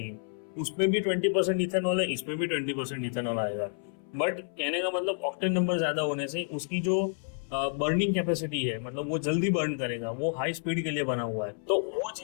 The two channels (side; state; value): right; silent; 58 dB below the other